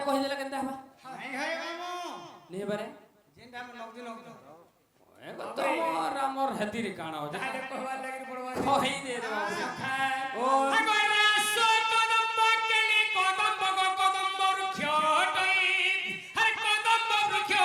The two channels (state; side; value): identical; both; correlation 1.00